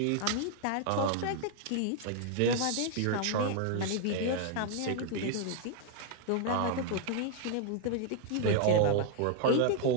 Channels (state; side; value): different; both; correlation 0.00